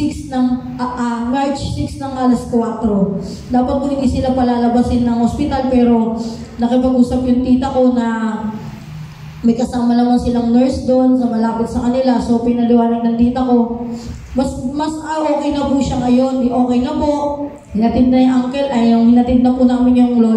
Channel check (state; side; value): identical; both; correlation 1.00